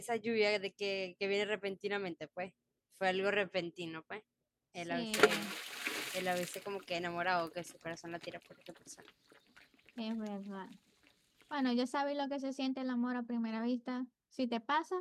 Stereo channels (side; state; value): both; identical; correlation 1.00